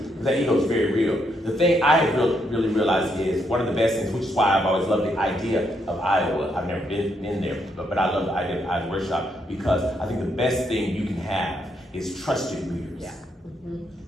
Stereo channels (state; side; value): normal; both; correlation 0.76